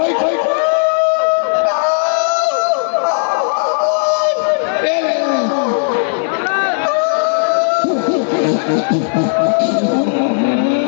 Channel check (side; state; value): right; silent; digital silence